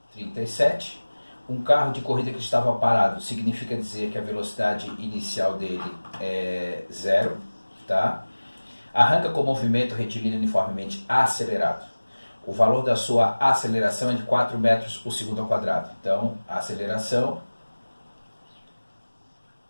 37, um carro de corrida que estava parado significa dizer que a velocidade inicial dele é 0, tá? Arranca com movimento retilíneo uniformemente acelerado. O valor da sua aceleração é de 4 metros por segundo ao quadrado. Então, a aceleração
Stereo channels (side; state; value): both; inverted; correlation -1.00